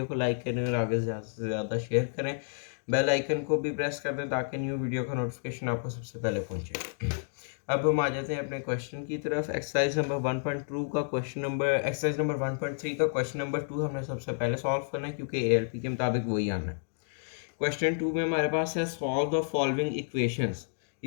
को लाइक करें और आगे ज़्यादा से ज़्यादा शेयर करें। बेल आइकन को भी प्रेस कर दें ताकि न्यू वीडियो का नोटिफिकेशन आपको सबसे पहले पहुंचे। अब हम आ जाते हैं अपने क्वेश्चन की तरफ। एक्सरसाइज नंबर 1.2 का क्वेश्चन नंबर एक्सरसाइज नंबर 1.3 का क्वेश्चन नंबर 2 हमने सबसे पहले सॉल्व करना है क्योंकि ALP के मुताबिक वही आना है। क्वेश्चन 2 में हमारे पास है सॉल्व द फॉलोइंग इक्वेशंस।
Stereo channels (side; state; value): right; silent; digital silence